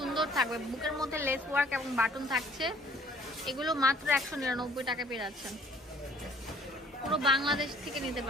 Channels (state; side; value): normal; both; correlation 0.57